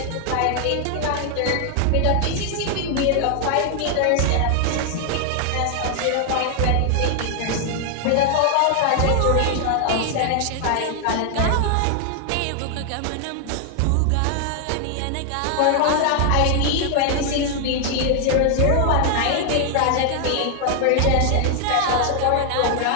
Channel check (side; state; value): both; different; correlation 0.00